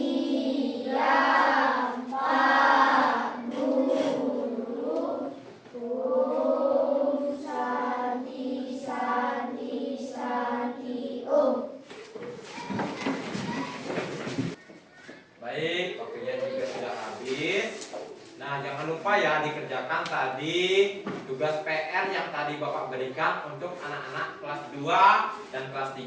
Baik, waktunya juga sudah habis. Nah, jangan lupa ya dikerjakan tadi tugas PR yang tadi Bapak berikan untuk anak-anak kelas 2 dan kelas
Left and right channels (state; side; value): identical; both; correlation 1.00